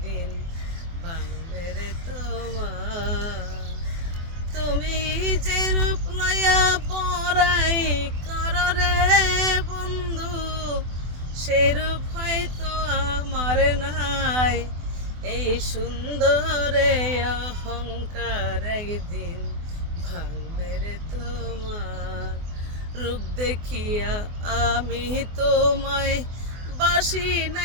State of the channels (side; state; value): left; late; 24 ms